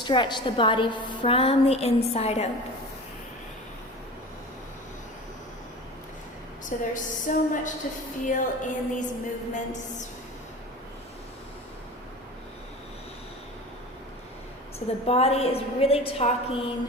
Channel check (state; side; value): normal; both; correlation 0.34